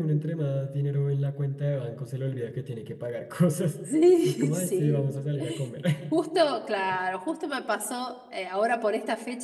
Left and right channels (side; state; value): both; identical; correlation 1.00